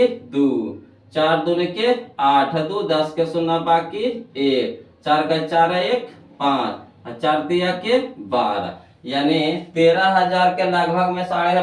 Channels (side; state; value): both; identical; correlation 1.00